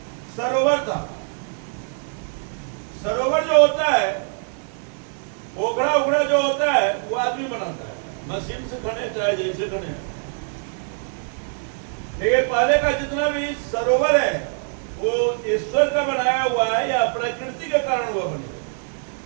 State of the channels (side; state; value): left; silent; 57 dB below the other